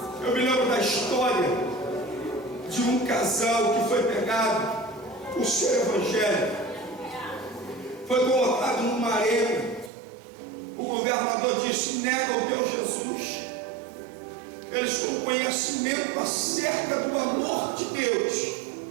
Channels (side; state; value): left; drops out; at 9.9 s